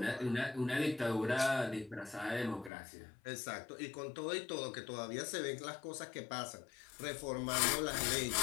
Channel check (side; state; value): right; drops out; at 2.7 s